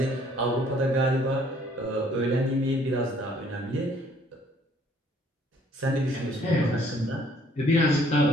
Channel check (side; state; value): both; normal; correlation 0.61